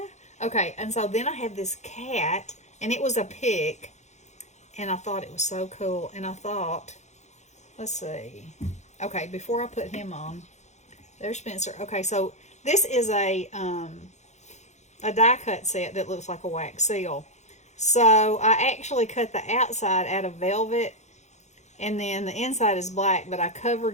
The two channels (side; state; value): right; late; 0.33 ms